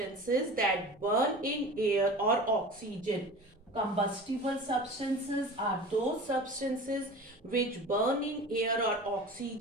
that burn in air or oxygen. Combustible substances are those substances which burn in air or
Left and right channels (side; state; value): both; normal; correlation 0.36